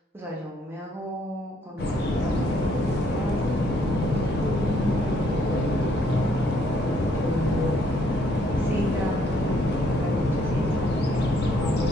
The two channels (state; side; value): normal; both; correlation 0.68